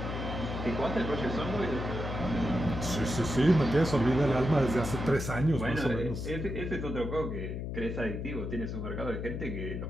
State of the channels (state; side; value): noise; left; hum, 4 dB below the sound